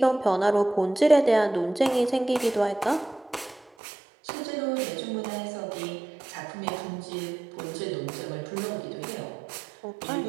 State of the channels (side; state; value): left; drops out; at 3.7 s